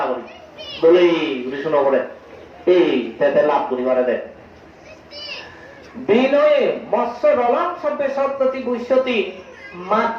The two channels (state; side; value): identical; both; correlation 1.00